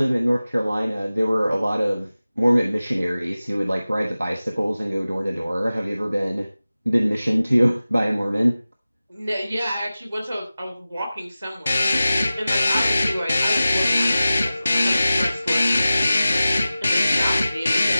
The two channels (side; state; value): both; inverted; correlation -0.96